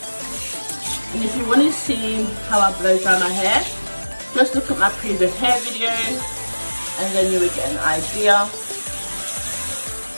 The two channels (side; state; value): both; inverted; correlation -1.00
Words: And if you want to see how I blow dry my hair, just look at my previous hair videos and then you will get an idea